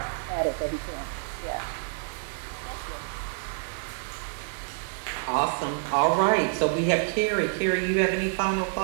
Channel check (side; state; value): left; silent; digital silence